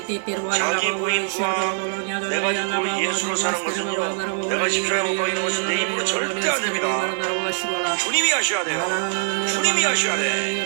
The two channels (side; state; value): left; silent; digital silence